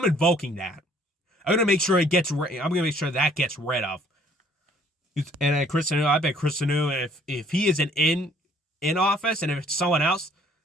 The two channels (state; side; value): normal; both; correlation 0.59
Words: invoking that. I'm going to make sure I'm going to make sure that gets rid of. And Chris Sununu, I bet Chris Sununu, if he isn't in office and if it's someone else,